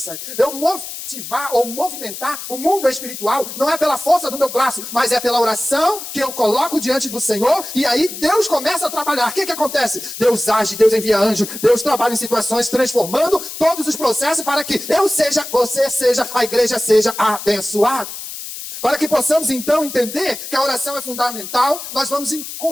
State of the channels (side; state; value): left; noise; hiss, 9 dB below the sound